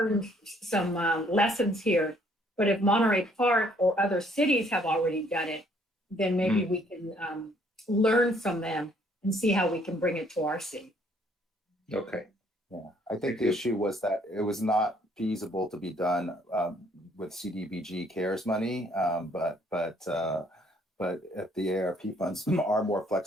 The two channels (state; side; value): normal; both; correlation 0.64